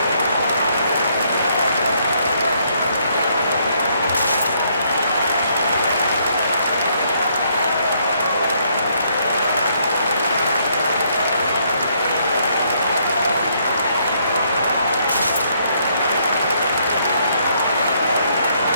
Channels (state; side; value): inverted; both; correlation -0.70